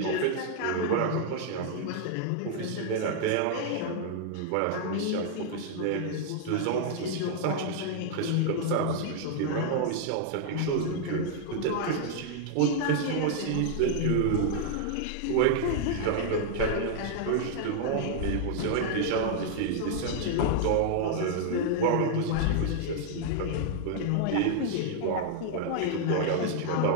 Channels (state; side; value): different; both; correlation -0.01